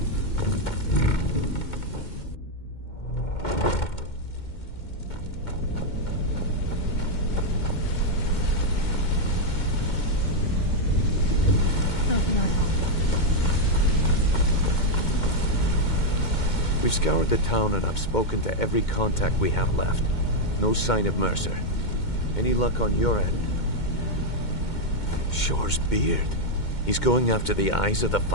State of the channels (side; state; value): right; late; 2.2 ms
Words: How can I help? We've scoured the town and I've spoken to every contact we have left. No sign of Mercer. Any luck on your end? Shore's beard. He's going after the eyes of the